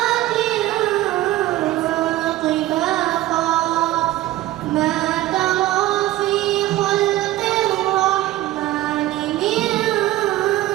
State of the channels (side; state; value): left; quieter; 16.0 dB